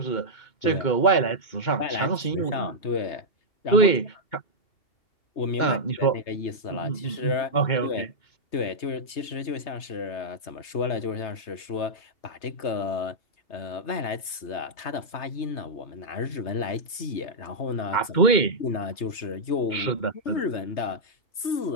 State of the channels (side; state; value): right; late; 3.3 ms